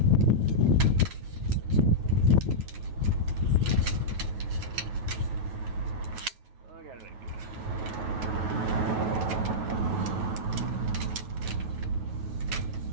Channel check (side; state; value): left; late; 9.4 ms